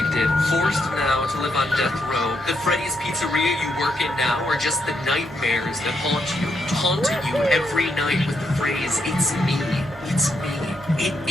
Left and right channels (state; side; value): normal; both; correlation 0.78